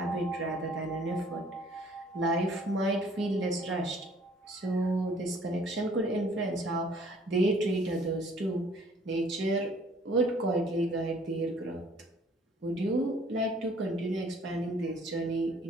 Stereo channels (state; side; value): normal; both; correlation 0.57